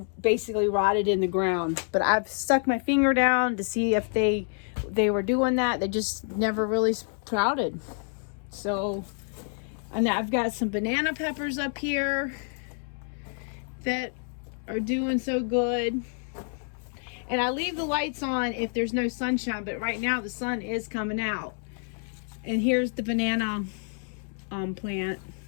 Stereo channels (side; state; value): right; silent; 55 dB below the other